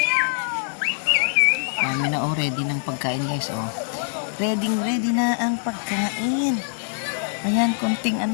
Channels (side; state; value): right; silent; 63 dB below the other